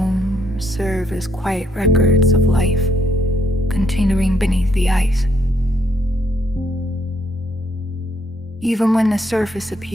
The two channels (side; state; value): both; normal; correlation 0.71